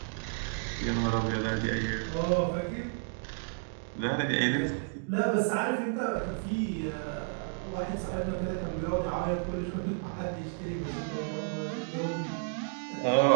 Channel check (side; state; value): left; silent; 57 dB below the other